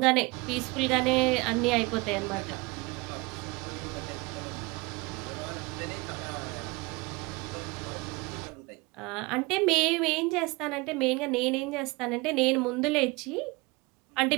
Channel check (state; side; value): quieter; left; 25.2 dB